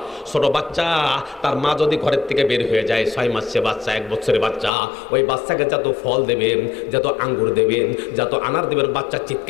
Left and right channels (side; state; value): right; drops out; at 4.7 s